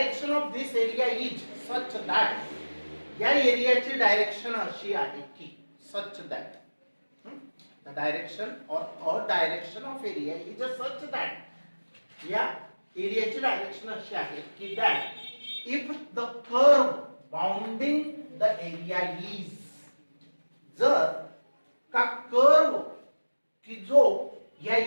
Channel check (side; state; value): both; inverted; correlation -1.00